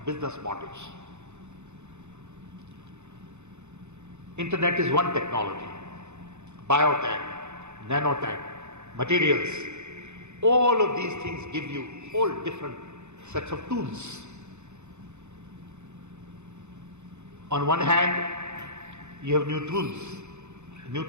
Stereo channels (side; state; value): left; late; 0.82 ms